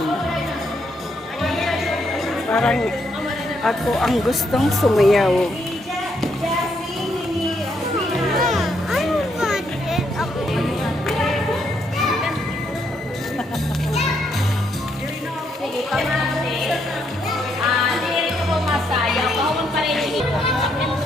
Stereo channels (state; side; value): normal; both; correlation 0.75